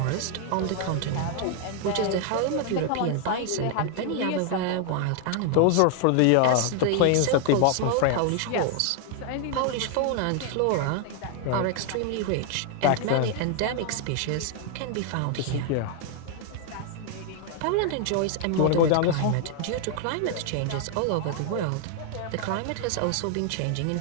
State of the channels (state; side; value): different; both; correlation 0.00